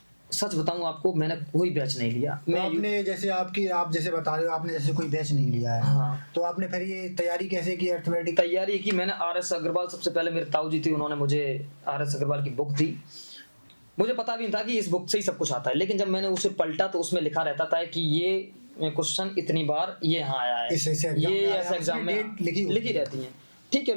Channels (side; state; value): both; inverted; correlation -1.00